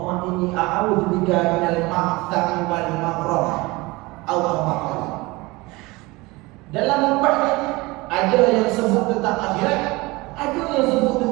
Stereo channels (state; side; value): quieter; left; 22.7 dB